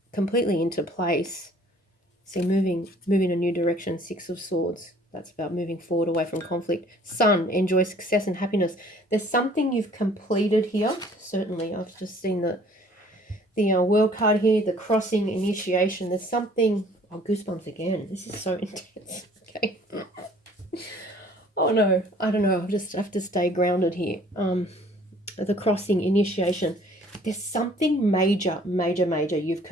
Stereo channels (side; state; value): both; normal; correlation 0.55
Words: completely into place. See, moving a new direction, Six of Swords. That's about moving forward away from conflict. Sun, enjoy success and happiness. There's something you've completed here. Certainly, I've just seen the World card here, the crossing, initiation. There's something, oh, goosebumps again. This is so intense. Okay. Oh no, I don't know. I'll just have to stay grounded here. The crossing, initiation. There's something major you've